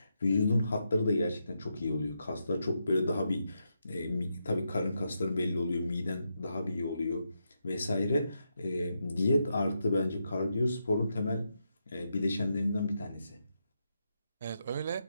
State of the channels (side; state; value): both; inverted; correlation -0.83